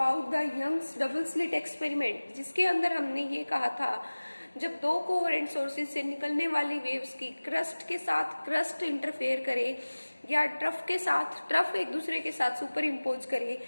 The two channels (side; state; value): both; inverted; correlation -1.00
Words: the Young's double slit experiment, जिसके अंदर हमने ये कहा था जब दो coherent sources से निकलने वाली वेव्स की क्रस्ट के साथ क्रस्ट इंटरफेयर करे या ट्रफ के साथ ट्रफ एक दूसरे के साथ सुपर इम्पोज करे